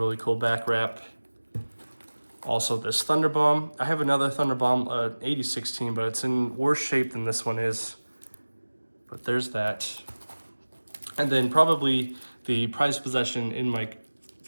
cool back wrap. Also this Thunder Bomb. I have another Thunder Bomb, 8016, but it's in worse shape than this one is. But there's that. And then probably the prized possession in my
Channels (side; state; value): both; inverted; correlation -1.00